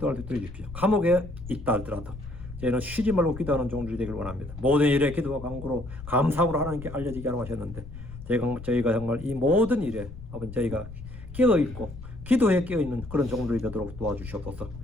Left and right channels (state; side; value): noise; left; rumble, 13 dB below the sound